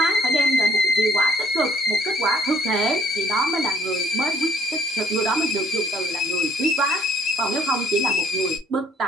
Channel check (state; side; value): normal; both; correlation 0.61